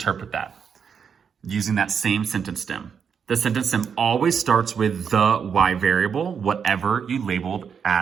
that using that same sentence stem. The sentence stem always starts with the y variable, whatever you labeled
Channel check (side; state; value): left; quieter; 6.9 dB